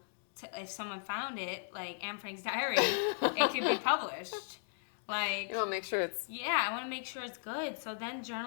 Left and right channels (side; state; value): right; silent; digital silence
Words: to, if someone found it, like Anne Frank's diary, it could be published. Like You want to make sure it's... Yeah, I want to make sure it's good. So then